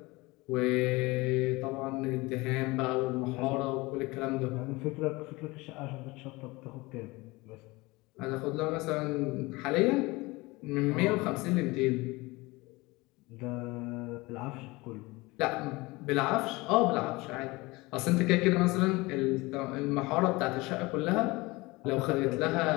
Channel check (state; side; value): quieter; right; 22.7 dB